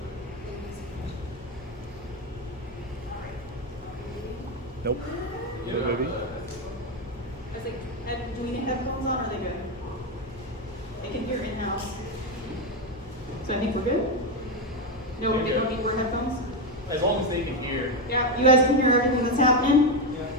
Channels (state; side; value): normal; both; correlation 0.09